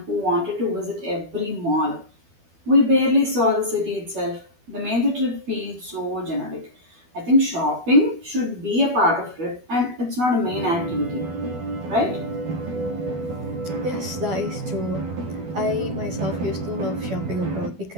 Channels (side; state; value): left; late; 12 ms